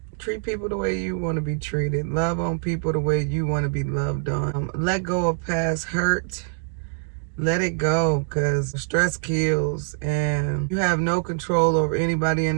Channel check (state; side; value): silent; left; digital silence